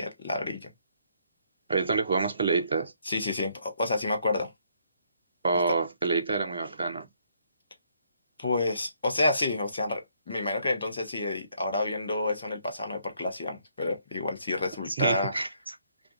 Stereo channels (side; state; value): both; inverted; correlation -0.69